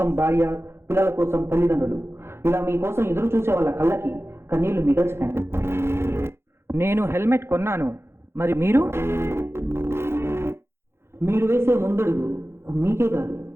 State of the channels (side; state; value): left; late; 0.12 ms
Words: భార్య, పిల్లల కోసం తల్లిదండ్రులు, ఇలా మీకోసం ఎదురు చూసే వాళ్ళ కళ్ళకి కన్నీళ్లు మిగల్చకండి. నేను హెల్మెట్ కొన్నాను, మరి మీరు? మీరు వేసే ముందడుగు మీకే కాదు,